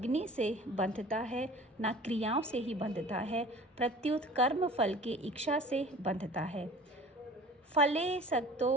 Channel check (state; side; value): normal; both; correlation 0.44